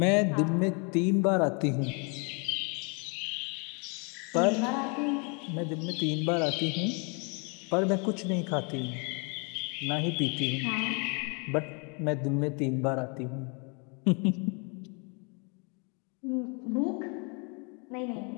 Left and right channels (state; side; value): quieter; right; 34.6 dB